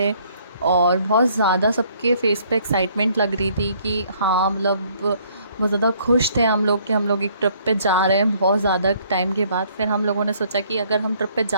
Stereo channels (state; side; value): inverted; both; correlation -0.63